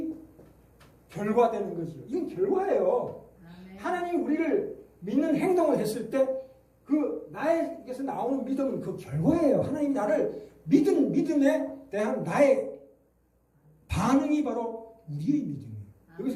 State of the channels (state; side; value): identical; both; correlation 1.00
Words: 결과되는 거죠. 이건 결과예요. 하나님이 우리를 믿는 행동을 했을 때 그 나에게서 나오는 믿음은 그 결과예요. 하나님이 나를 믿음에 대한 나의 반응이 바로 우리의 믿음이에요.